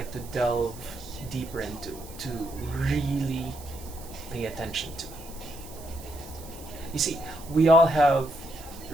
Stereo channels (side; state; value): right; noise; hiss, 18 dB below the sound